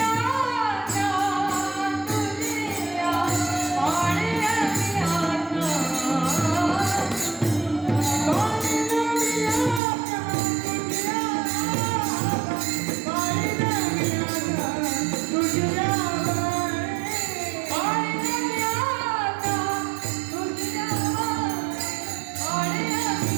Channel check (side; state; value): left; drops out; at 9.8 s